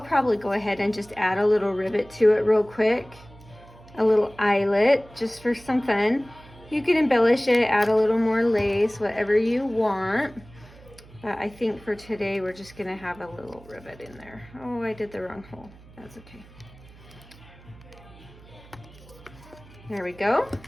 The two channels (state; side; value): noise; right; hum, 22 dB below the sound